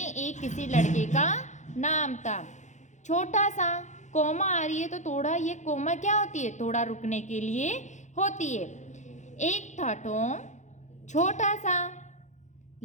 एक किसी लड़के का नाम था. छोटा सा कोमा आ रही है तो थोड़ा, ये कोमा क्या होती है? थोड़ा रुकने के लिए होती है. एक था टॉम, छोटा सा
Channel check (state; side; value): late; right; 0.35 ms